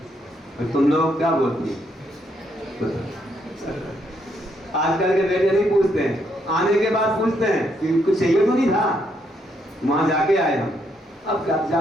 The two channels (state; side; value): normal; both; correlation 0.74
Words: और तुम लोग क्या बोलते हैं? आजकल के बेटे नहीं पूछते हैं, आने के बाद पूछते हैं कि कुछ चाहिए तो नहीं था, वहां जाके आए हम, अब